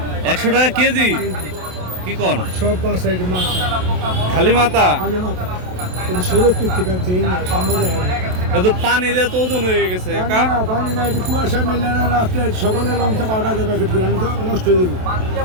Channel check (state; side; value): late; left; 27 ms